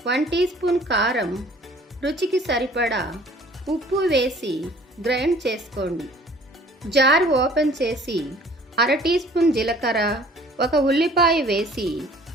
1 టీ స్పూన్ కారం, రుచికి సరిపడా ఉప్పు వేసి గ్రైండ్ చేసుకోండి. జార్ ఓపెన్ చేసి 1/2 టీ స్పూన్ జీలకర్ర, 1 ఉల్లిపాయ వేసి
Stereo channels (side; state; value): both; normal; correlation 0.52